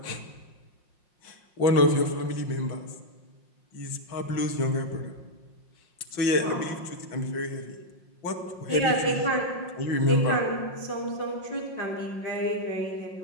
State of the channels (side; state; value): right; late; 5.6 ms